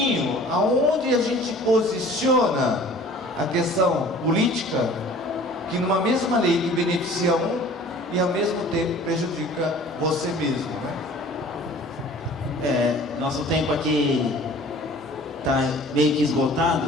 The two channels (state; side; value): normal; both; correlation 0.47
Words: aonde a gente posiciona a questão política, que numa mesma lei que beneficia um e ao mesmo tempo prejudica você mesmo, né? Nosso tempo aqui está meio que